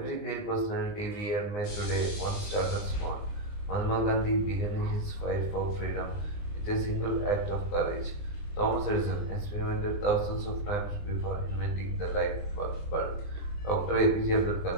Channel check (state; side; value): late; right; 19 ms